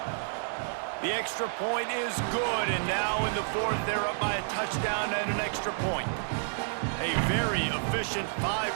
The extra point is good, and now in the 4th, they're up by a touchdown and an extra point. A very efficient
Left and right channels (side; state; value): left; silent; digital silence